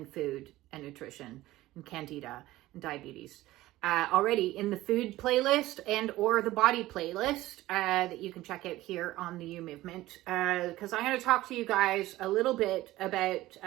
food and nutrition and Candida and diabetes already in the food playlist and or the body playlist that you can check out here on the You Movement, because I'm going to talk to you guys a little bit about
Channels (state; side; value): quieter; left; 16.7 dB